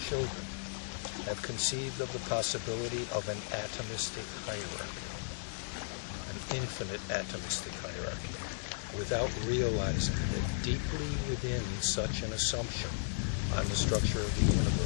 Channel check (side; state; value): right; silent; digital silence